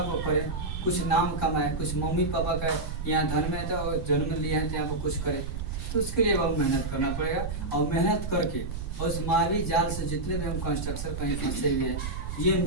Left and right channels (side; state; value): right; noise; rumble, 5 dB below the sound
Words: कुछ नाम कमाए, कुछ मम्मी पापा का यहाँ धन में था और जन्म लिया है तो यहाँ पर कुछ करे, तो उसके लिए अब मेहनत करना पड़ेगा। और मेहनत करके और उस मायावी जाल से जितने भी हम कंस्ट्रक्शन कहीं फंसे हुए हैं, ये